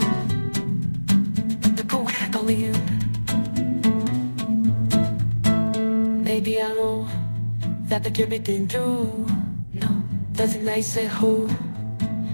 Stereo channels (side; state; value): both; inverted; correlation -1.00